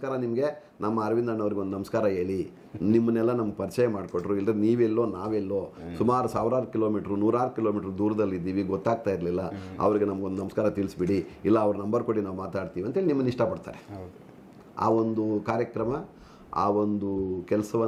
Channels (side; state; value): both; identical; correlation 1.00